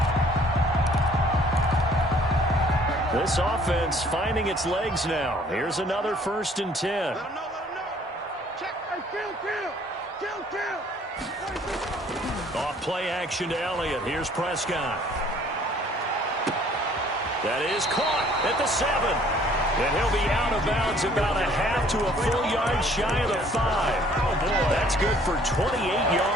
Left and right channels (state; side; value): normal; both; correlation 0.58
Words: This offense finding its legs now. Here's another 1st and 10. Off play action to Elliott. Here's Prescott. That is caught at the 7. And he'll be out of bounds about a half to a full yard shy of the 5. Oh, boy. That's good for 28